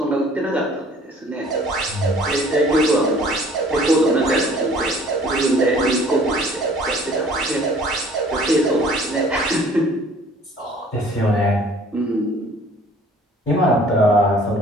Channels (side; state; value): both; normal; correlation 0.53